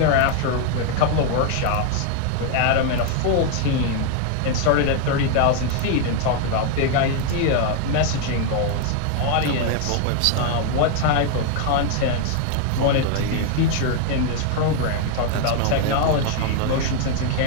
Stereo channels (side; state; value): both; different; correlation 0.00